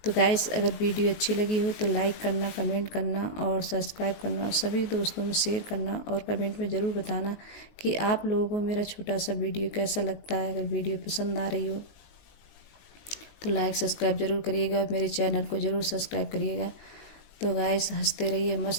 तो गाइस अगर वीडियो अच्छी लगी हो तो लाइक करना, कमेंट करना और सब्सक्राइब करना, और सभी दोस्तों में शेयर करना, और कमेंट में ज़रूर बताना कि आप लोगों को मेरा छोटा सा वीडियो कैसा लगता है। अगर वीडियो पसंद आ रही हो तो लाइक सब्सक्राइब ज़रूर करिएगा, मेरे चैनल को ज़रूर सब्सक्राइब करिएगा। तो गाइस हंसते रहिए,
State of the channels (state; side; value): late; right; 19 ms